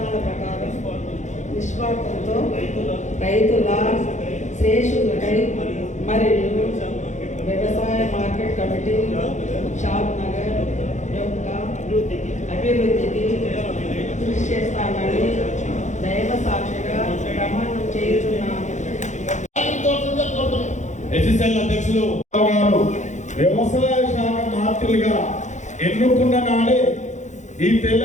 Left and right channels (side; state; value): right; late; 0.35 ms